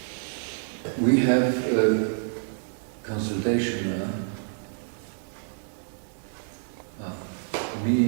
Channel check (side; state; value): left; silent; 59 dB below the other